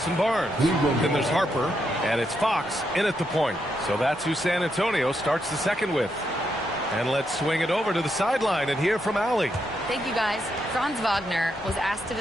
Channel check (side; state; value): both; normal; correlation 0.80